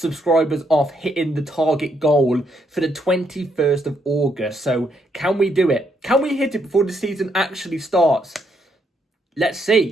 off hitting the target goal for the 21st of August. So can we do it? Can we hit it before the season actually starts? Let's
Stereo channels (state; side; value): normal; both; correlation 0.75